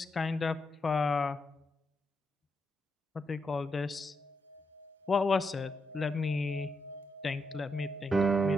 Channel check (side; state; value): both; normal; correlation 0.82